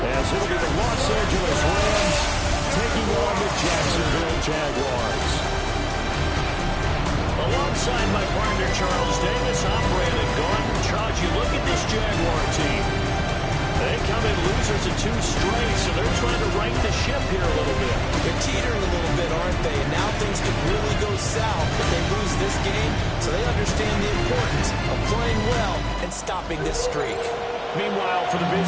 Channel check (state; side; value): identical; both; correlation 1.00